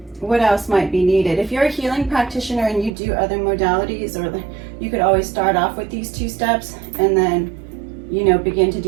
what else might be needed. If you're a healing practitioner and you do other modalities, or you could always start off with these 2 steps and then, you know, begin to do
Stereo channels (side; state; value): left; drops out; at 2.9 s